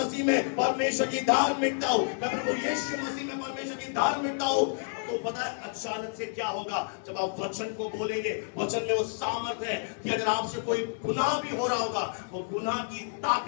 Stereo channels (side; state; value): right; silent; digital silence